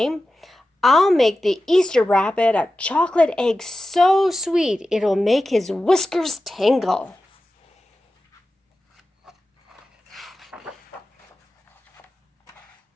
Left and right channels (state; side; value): normal; both; correlation 0.94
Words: I'll make the Easter rabbit a chocolate egg so sweet it'll make his whiskers tingle.